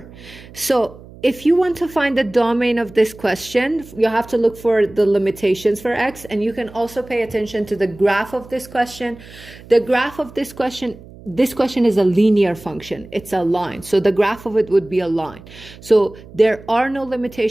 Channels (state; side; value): noise; right; hum, 19 dB below the sound